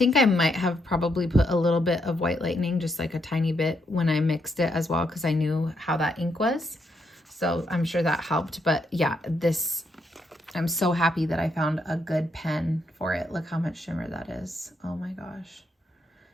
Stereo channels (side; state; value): both; normal; correlation 0.78